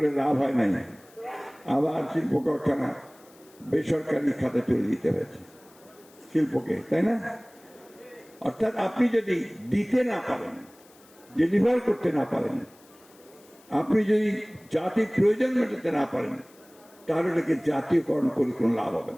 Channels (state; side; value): noise; left; hiss, 27 dB below the sound